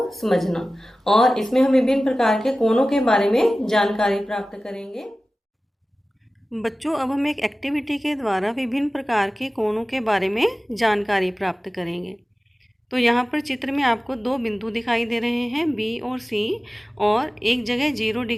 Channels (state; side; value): normal; both; correlation 0.96